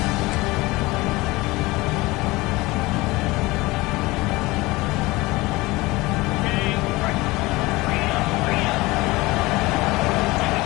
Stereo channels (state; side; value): quieter; right; 21.3 dB